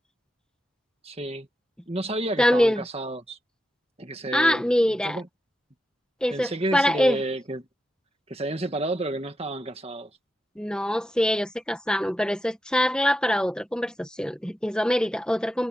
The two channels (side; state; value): both; normal; correlation 0.87